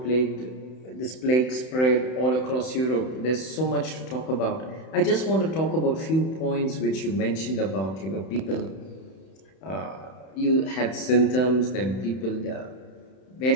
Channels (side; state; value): right; late; 31 ms